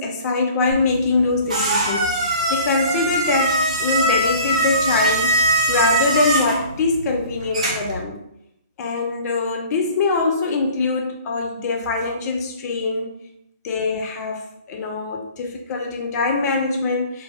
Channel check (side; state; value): both; inverted; correlation -0.46